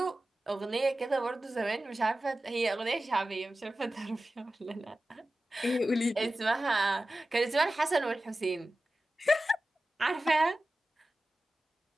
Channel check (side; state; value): both; normal; correlation 0.95